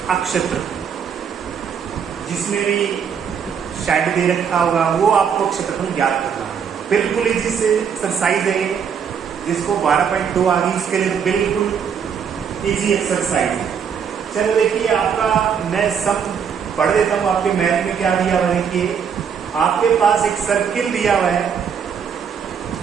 क्षेत्रफल। जिसमें भी शेड दे रखा होगा वो आपको क्षेत्रफल ज्ञात करना है। बिल्कुल इजी से एक्सरसाइज है, जिसको 12.2 आ गई इसके लिए बिल्कुल इजी एक्सरसाइज है। चलो देखिए, आपका मैं सब पढ़ देता हूँ। आपके मैथ में क्या दिया हुआ है, देखिए आपके पास एक सर्किल दिया हुआ है,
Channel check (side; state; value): left; quieter; 7.2 dB